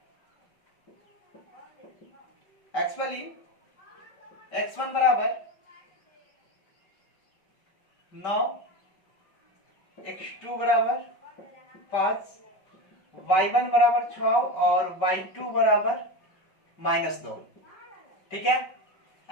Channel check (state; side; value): late; right; 5.2 ms